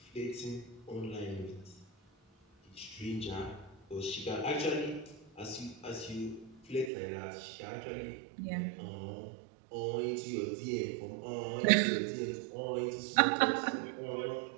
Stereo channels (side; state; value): left; drops out; at 6.9 s